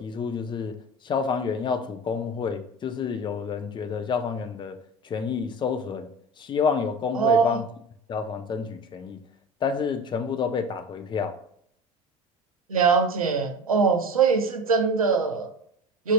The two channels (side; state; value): both; normal; correlation 0.31